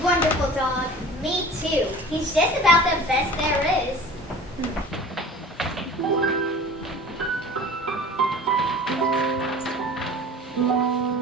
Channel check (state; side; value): normal; both; correlation 0.41